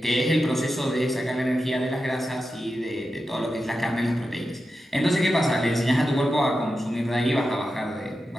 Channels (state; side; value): normal; both; correlation 0.90